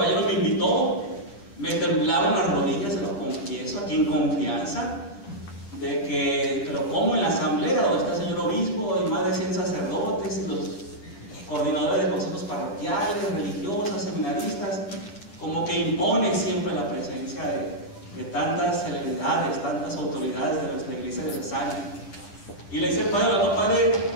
me invitó, me temblaron las rodillas, se lo confieso aquí en confianza, de que, pero como en la asamblea donde está el señor obispo y más de 100 sacerdotes y los coordinadores de consejos parroquiales, religiosas, seminaristas, como que impone siempre la presencia de tantas celebridades, tantas autoridades de nuestra iglesia diocesana. Y le dice el padre, no, padre,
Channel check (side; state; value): right; late; 9.9 ms